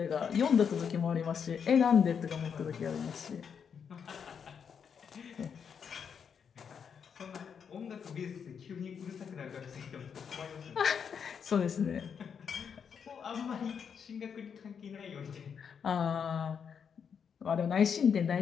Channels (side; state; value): right; quieter; 7.0 dB